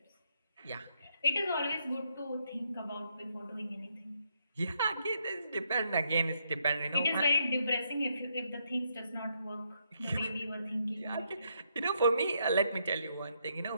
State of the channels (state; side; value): inverted; both; correlation -0.76